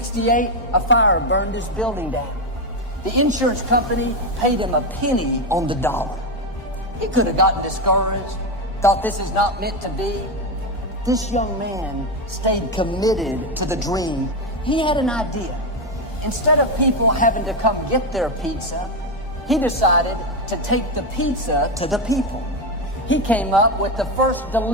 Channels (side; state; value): both; normal; correlation 0.10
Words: a fire burned his building down. The insurance company paid him a penny on the dollar. He could have gotten discouraged, thought this is not meant to be. This young man stayed committed to the dream. He had an idea. Instead of people having to come get their pizza, he decided to take the pizza to the people. He came up with the first